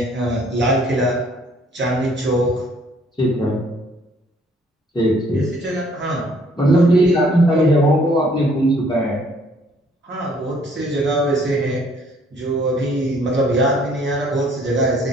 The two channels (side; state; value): both; normal; correlation 0.62